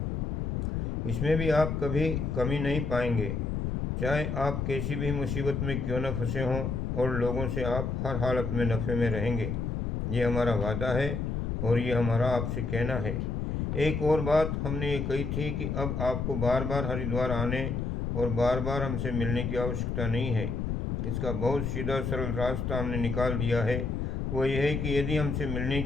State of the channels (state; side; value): noise; left; rumble, 1 dB below the sound